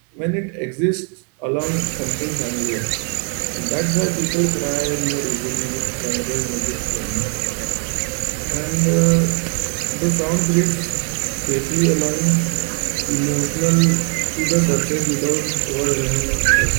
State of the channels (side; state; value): left; quieter; 39.7 dB